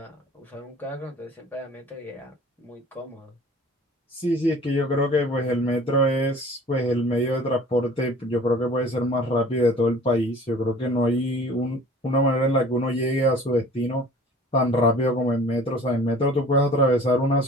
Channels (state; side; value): normal; both; correlation 0.47